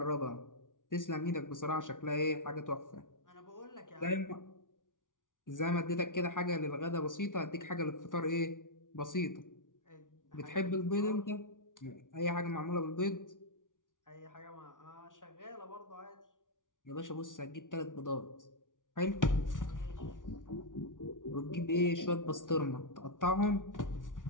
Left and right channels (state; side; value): late; right; 0.88 ms